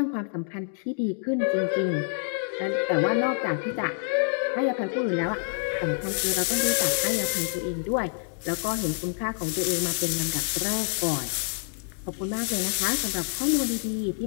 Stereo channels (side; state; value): right; silent; digital silence